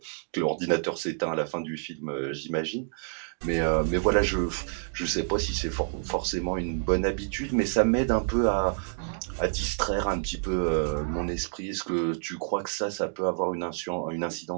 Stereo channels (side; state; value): left; silent; digital silence